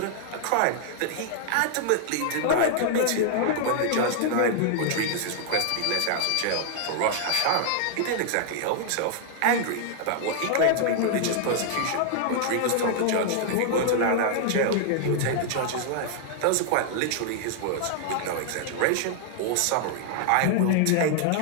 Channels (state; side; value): different; both; correlation -0.01